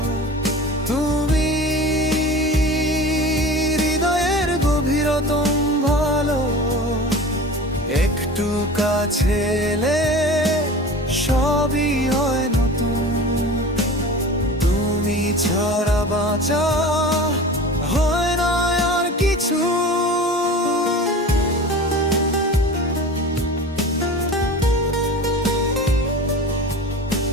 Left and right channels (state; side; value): normal; both; correlation 0.36